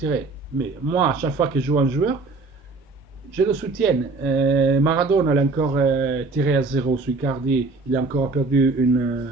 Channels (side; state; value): left; quieter; 3.6 dB